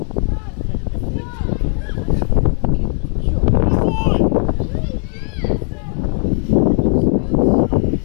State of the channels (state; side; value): quieter; right; 39.9 dB